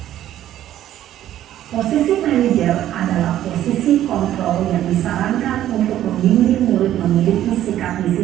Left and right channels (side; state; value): left; quieter; 12.3 dB